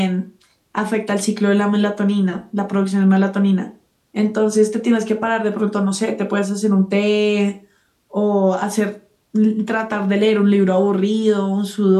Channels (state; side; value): identical; both; correlation 1.00